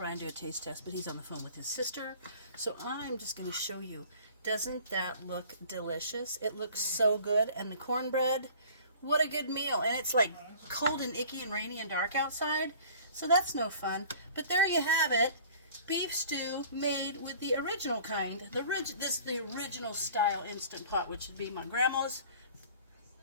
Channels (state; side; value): inverted; both; correlation -0.47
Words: do a taste test, but he's on the phone with his sister. So I'm just going to show you. Doesn't that look delicious? It looks so good. And the cornbread, what a good meal. And it's like cold and icky and rainy and dark outside. So that's no fun. But there you have it. Beef stew made with the original kind. This is the original style Instant Pot, which would be my grandma's